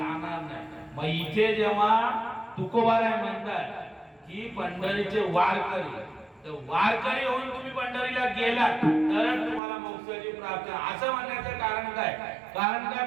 नाही. मग इथे जेव्हा तुकोबाराय म्हणतात की पंढरीचे वारकरी, तर वारकरी होऊन तुम्ही पंढरीला गेलात तरच तुम्हाला मोक्षाची प्राप्ती. असं म्हणण्याचं कारण काय? कारण काय,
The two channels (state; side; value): drops out; left; at 9.6 s